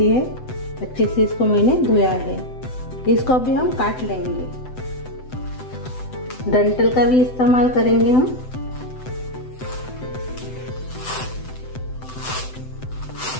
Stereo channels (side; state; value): right; late; 7.9 ms